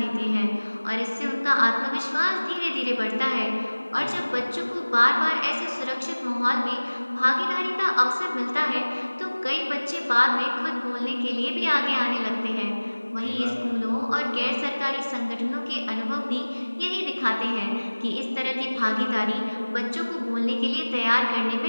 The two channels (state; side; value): inverted; both; correlation -1.00